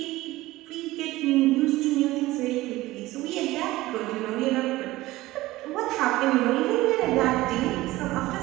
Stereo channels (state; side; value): quieter; left; 17.9 dB